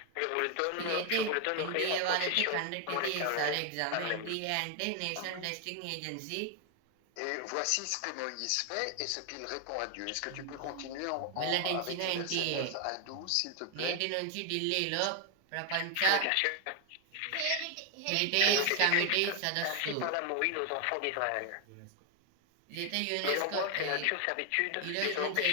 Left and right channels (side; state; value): both; different; correlation 0.01